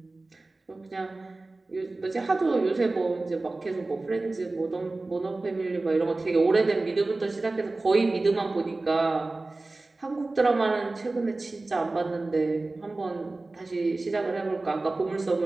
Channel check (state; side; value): quieter; left; 3.2 dB